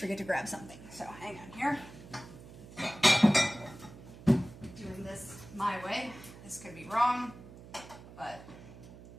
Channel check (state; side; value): noise; right; hum, 17 dB below the sound